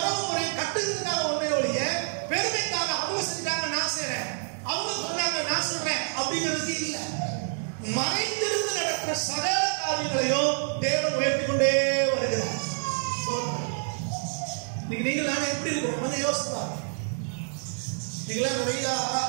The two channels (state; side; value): silent; left; digital silence